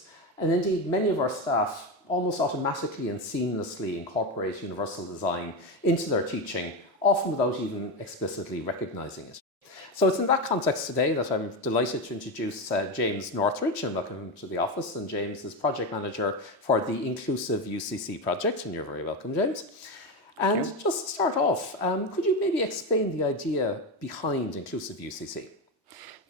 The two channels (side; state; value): both; normal; correlation 0.15